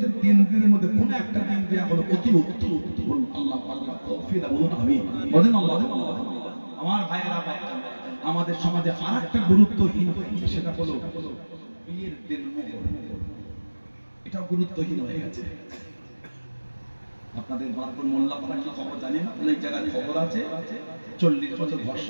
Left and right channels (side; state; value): both; inverted; correlation -1.00